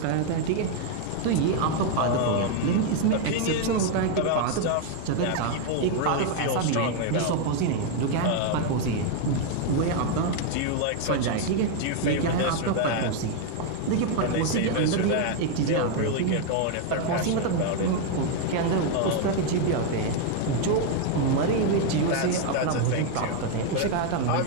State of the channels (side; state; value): both; different; correlation 0.00